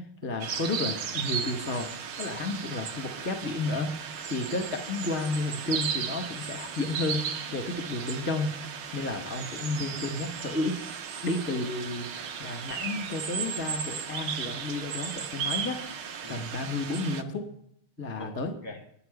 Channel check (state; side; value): late; left; 6.5 ms